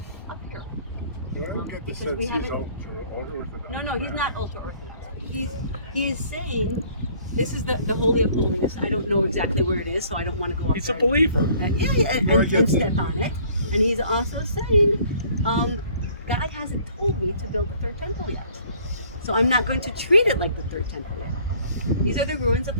up here. Well, I don't get the Because sense we he's haven't- ultra-Orthodox. No, he's not ultra-Orthodox. He is saying this is the Holy of Holies. I don't know exactly where it is, so I don't want to go up He's there. a believer. And step on it. And he's also saying, God hasn't told me to build the third temple yet. So I'm not going to treat it like the third temple yet. These are the ruins of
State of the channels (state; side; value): inverted; both; correlation -0.57